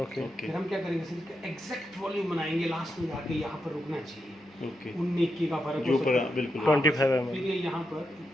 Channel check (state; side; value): normal; both; correlation 0.84